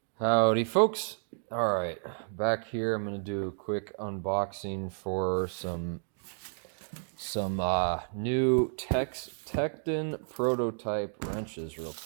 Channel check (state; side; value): silent; left; digital silence